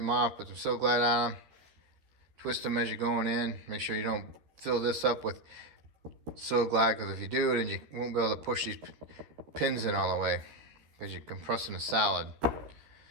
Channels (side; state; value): left; late; 13 ms